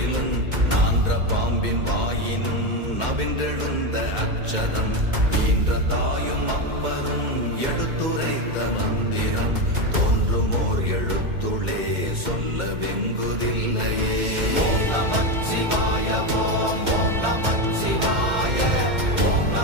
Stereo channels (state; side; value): late; left; 2.1 ms